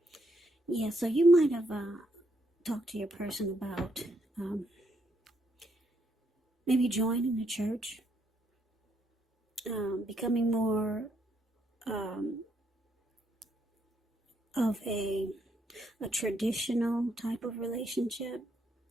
Yeah, so you might have talked to your person about maybe joining the church, becoming more of a traditional type of relationship.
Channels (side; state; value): both; normal; correlation 0.75